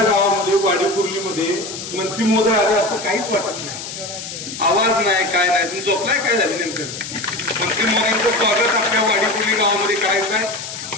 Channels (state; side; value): noise; left; hiss, 9 dB below the sound